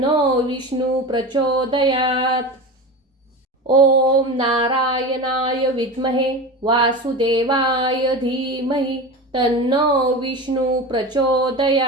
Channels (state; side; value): normal; both; correlation 0.27